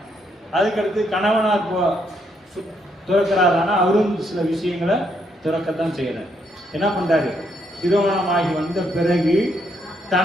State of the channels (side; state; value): both; normal; correlation 0.74